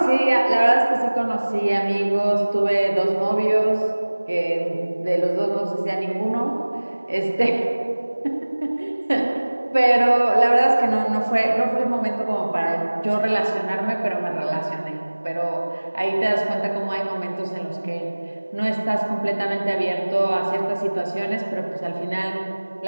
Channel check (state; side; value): inverted; both; correlation -1.00